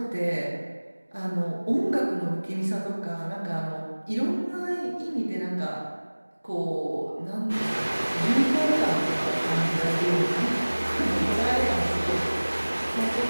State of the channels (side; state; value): both; inverted; correlation -1.00